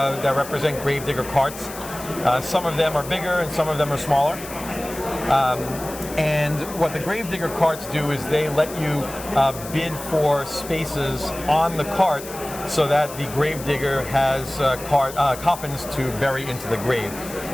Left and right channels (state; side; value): noise; left; hiss, 13 dB below the sound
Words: represent Gravedigger cards. Some of them are bigger and some of them are smaller. And what the Gravedigger cards do is they let you bid for spaces on the cart so that the Gravedigger has coffins to bury into the grave.